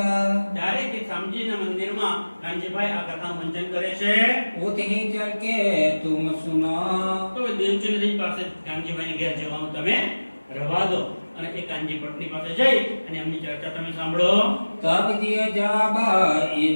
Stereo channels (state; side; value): inverted; both; correlation -1.00